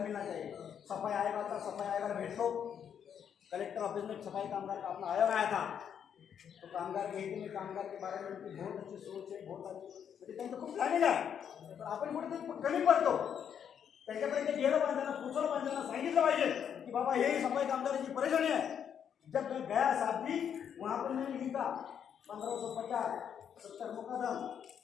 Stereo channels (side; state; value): right; quieter; 8.3 dB